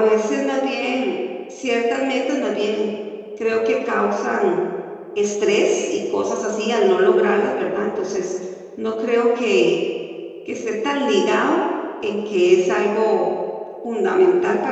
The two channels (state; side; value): identical; both; correlation 1.00